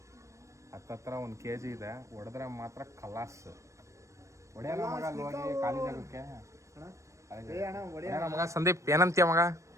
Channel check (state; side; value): late; left; 0.15 ms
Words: ಹತ್ತತ್ರ 1 kg ಇದೆ. ಹೊಡೆದ್ರೆ ಮಾತ್ರ ಕಲಾಸ್ ಹೊಡೆಯೋಣ ಮಗ. ಅಲ್ಲಿ ಹೋಗಿ ಖಾಲಿ ಜಾಗಕ್ಕೆ ಮಗ. ಸಂದೀಪ್ ಏನಂತೀಯ ಮಗ?